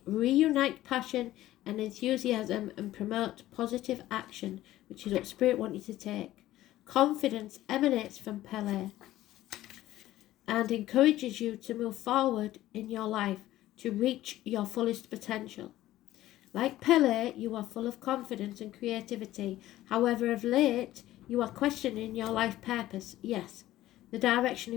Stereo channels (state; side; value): quieter; right; 14.9 dB